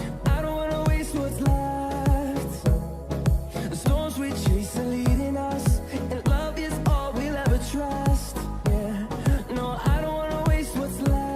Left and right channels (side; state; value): both; identical; correlation 1.00